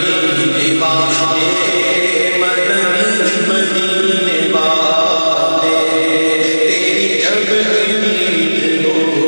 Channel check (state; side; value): inverted; both; correlation -1.00